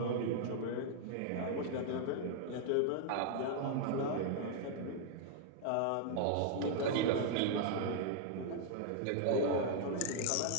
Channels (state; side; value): different; both; correlation 0.00